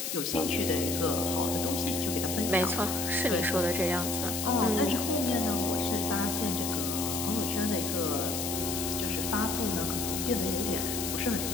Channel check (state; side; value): noise; left; hiss, 3 dB below the sound